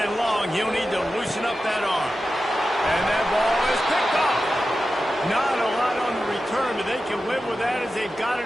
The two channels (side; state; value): both; normal; correlation 0.92